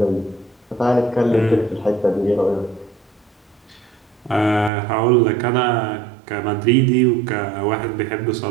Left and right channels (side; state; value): left; drops out; at 4.7 s